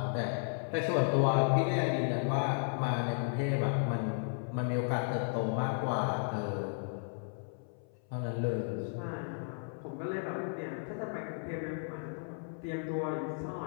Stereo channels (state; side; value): silent; right; 55 dB below the other